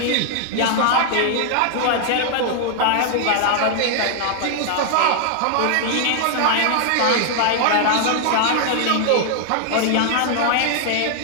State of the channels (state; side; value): different; both; correlation 0.00